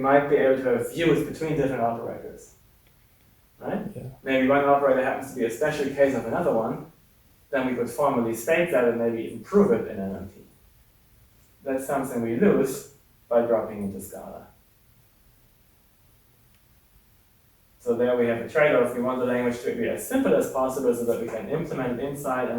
be able to have views between different operators, right? Yeah. Maybe one operator happens to be a special case of another one, then we could formally state that and maybe improve it in MMT. That's something we lose by dropping into Scala. So there we have a trade-off. We want the language to be as simple as possible so that we can implement it inside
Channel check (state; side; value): identical; both; correlation 1.00